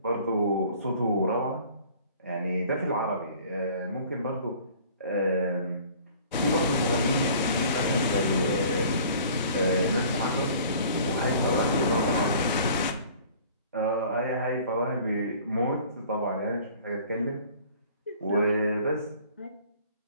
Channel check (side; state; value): both; inverted; correlation -0.50